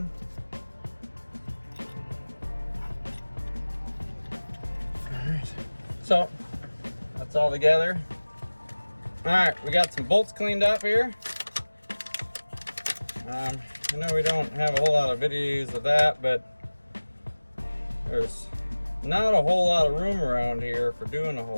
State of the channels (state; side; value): inverted; both; correlation -1.00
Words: All right, so that's all together. All right, we got some bolts cleaned up here. I know we don't have a whole lot of videos of that, but there's not a whole lot of room around here for doing a